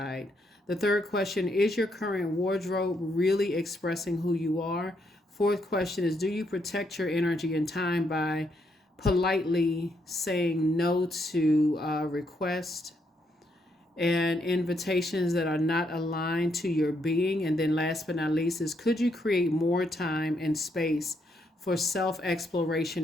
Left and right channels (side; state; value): both; normal; correlation 0.76